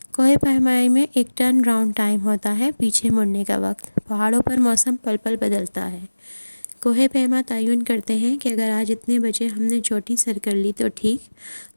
کوہ پیمائی میں ایک ٹرن اراؤنڈ ٹائم ہوتا ہے، پیچھے مڑنے کا وقت۔ پہاڑوں پر موسم پل پل بدلتا ہے۔ کوہ پیما تعین کرتے ہیں کہ اگر آج اتنے بجے ہم نے چوٹی سر کر لی تو ٹھیک،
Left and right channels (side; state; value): both; inverted; correlation -1.00